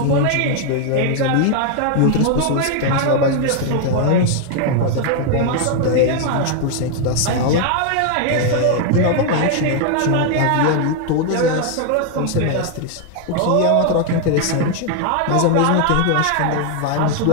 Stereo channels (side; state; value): both; different; correlation 0.00